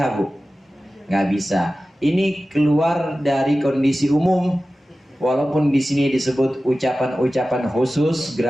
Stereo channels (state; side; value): normal; both; correlation 0.95